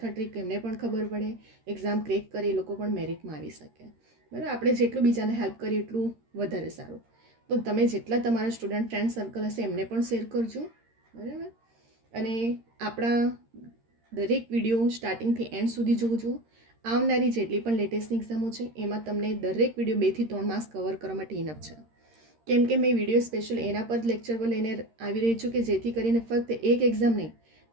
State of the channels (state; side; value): late; left; 13 ms